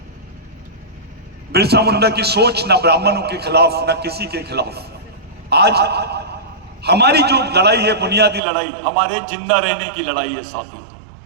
बिरसा मुंडा की सोच ना ब्राह्मणों के खिलाफ, ना किसी के खिलाफ। आज हमारी जो लड़ाई है, बुनियादी लड़ाई, हमारे जिंदा रहने की लड़ाई है साथियों।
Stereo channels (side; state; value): left; drops out; at 8.4 s